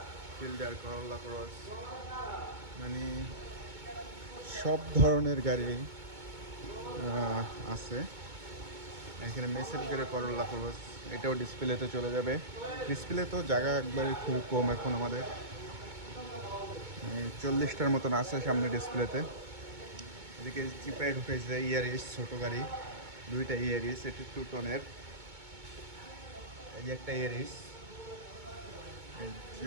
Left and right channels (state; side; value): late; left; 2.2 ms